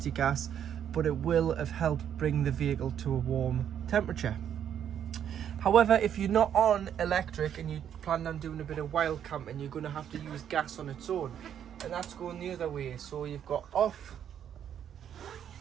your gas, but it will have helped bring the vehicle to a warm temperature. However, if you're not on electric and you plan on doing a bit of wild camping, you're going to have to use gas on its own, and that's going the other way. So you've got off,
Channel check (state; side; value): quieter; left; 9.3 dB